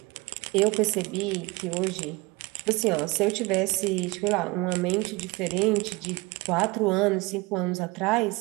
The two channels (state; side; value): quieter; left; 24.2 dB